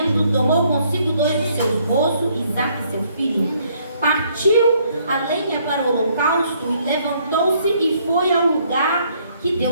tomou consigo 2 de seus moços, Isaque seu filho, partiu a lenha para o holocausto e levantou-se e foi ao lugar que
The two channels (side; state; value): both; inverted; correlation -0.67